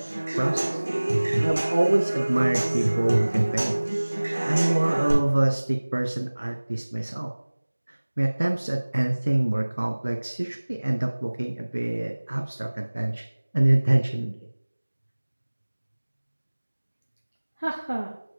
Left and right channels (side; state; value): both; inverted; correlation -1.00